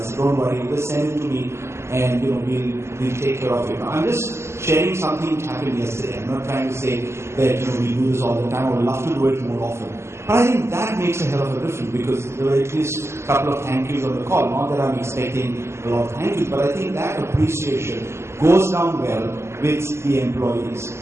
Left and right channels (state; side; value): late; left; 0.13 ms